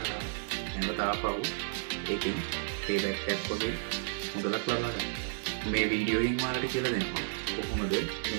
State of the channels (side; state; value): left; silent; digital silence